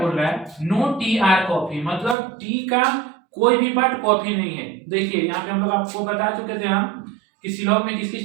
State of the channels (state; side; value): drops out; left; at 2.1 s